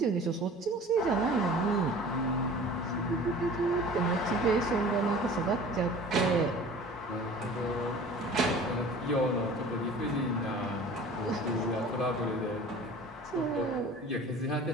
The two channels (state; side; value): normal; both; correlation 0.43